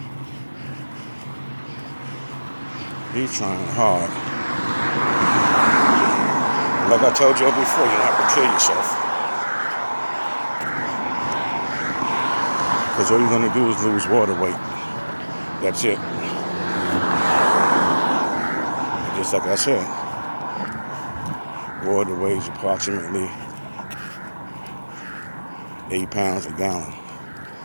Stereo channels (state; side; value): inverted; both; correlation -1.00